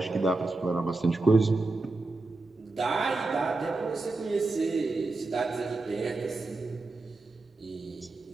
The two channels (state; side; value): quieter; left; 3.4 dB